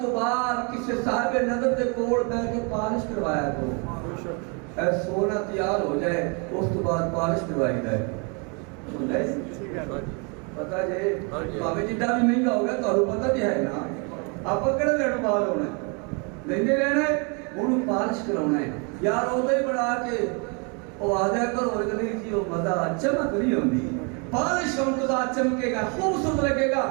تو بعد کسی صاحب نظر دے کوڑ پہ کے پارش کروایا تو اے سونا تیار ہو جائے اس تو بعد پارش کروائی جائے سن رہے پتہ جائے بابے جدہ بھی مہنگا ہوگا تو انہوں پتہ بھی ہے نا آپ کڑے لیڑ بال ہونا ہے لیندے لینا ہے انہوں پارش کراؤنا ہے یار ہوتا ہی بڑھا کے وہ آدھا کر اور گلی تھی وہ مزہ چمک نہیں ہوندی پارش ہم تو چمکے گا خوبصورت لگے گا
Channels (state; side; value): quieter; left; 34.3 dB